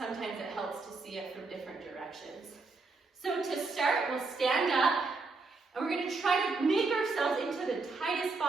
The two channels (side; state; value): left; quieter; 3.9 dB